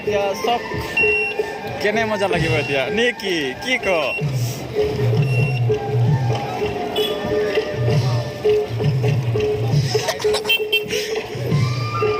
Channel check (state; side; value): identical; both; correlation 1.00